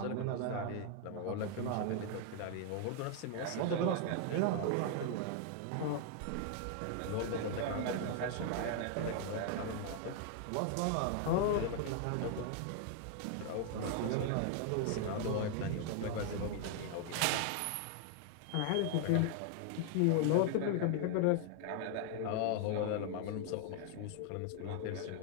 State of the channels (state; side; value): different; both; correlation 0.00